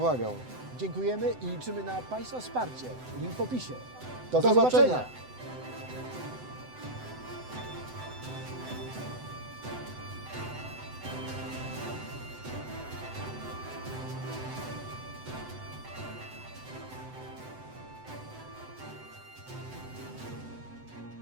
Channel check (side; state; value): left; late; 7.9 ms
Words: Dziękujemy i liczymy na Państwa wsparcie. Link w opisie. Do zobaczenia.